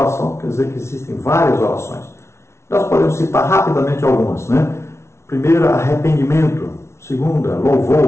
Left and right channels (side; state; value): right; late; 0.13 ms